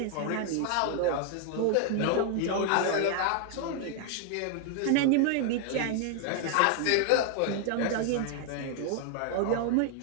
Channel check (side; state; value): both; different; correlation 0.00